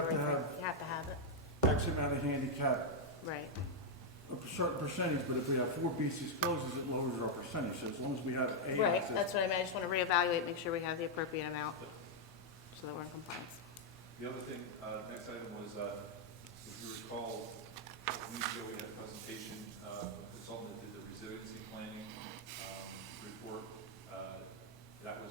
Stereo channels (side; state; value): both; normal; correlation -0.01